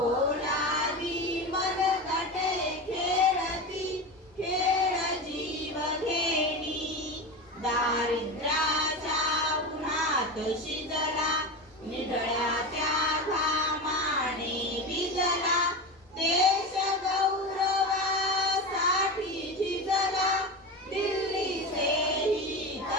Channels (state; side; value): normal; both; correlation 0.23